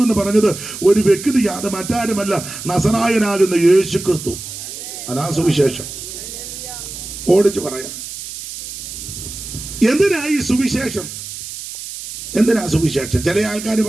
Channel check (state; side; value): noise; right; hiss, 10 dB below the sound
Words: എന്ന് പറഞ്ഞത് ഒരു വ്യക്തിയാ, അത് മറ്റാരും അല്ല, നസറായനാകുന്ന യേശു ക്രിസ്തു. അതാ സുവിശേഷം. ഓടിച്ചു പറയാം. എന്തിനാ ഈ സുവിശേഷം? എന്തിനാ സുവിശേഷം? ചില ആൾക്കാർ